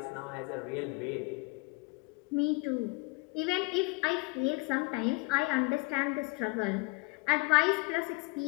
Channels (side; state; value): right; quieter; 26.3 dB